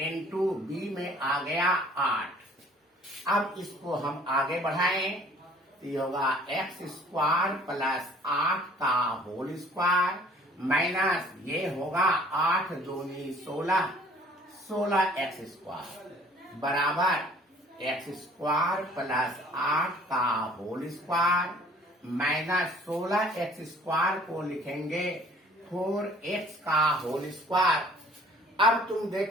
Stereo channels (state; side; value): normal; both; correlation 0.54